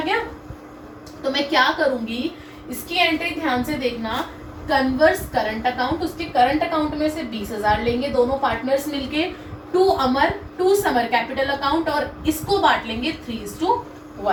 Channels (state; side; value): identical; both; correlation 1.00